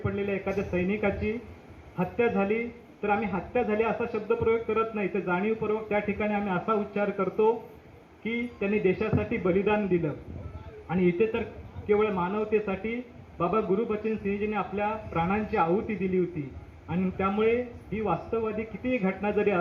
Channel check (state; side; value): identical; both; correlation 1.00